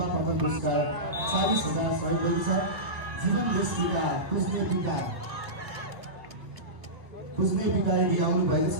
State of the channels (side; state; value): left; late; 1.5 ms